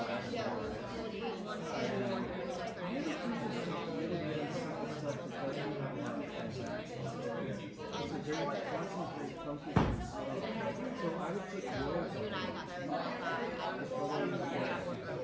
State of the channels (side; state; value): both; identical; correlation 1.00